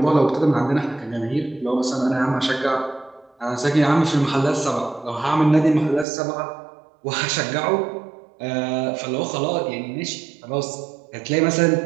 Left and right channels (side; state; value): left; drops out; at 6.1 s